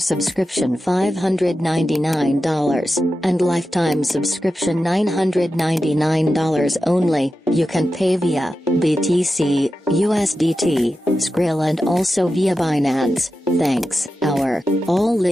$599, and lifetime subscription $999 only. You can pay via BTC, USDT, Skrill and also via Binance. Thanks. All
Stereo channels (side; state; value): both; normal; correlation 0.91